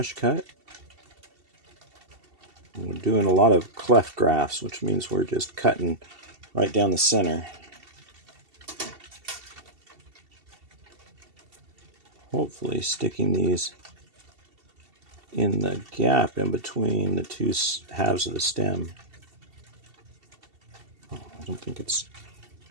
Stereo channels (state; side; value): late; left; 2.7 ms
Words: cut. And we're doing a lot of cleft grafts, which means we're just cutting right down the center. Hopefully sticking these in the gap in between the two halves of the stem. Oh, I don't think it's